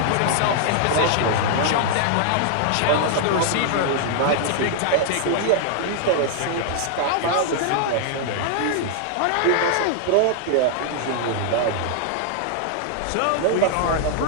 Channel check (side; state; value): both; different; correlation -0.01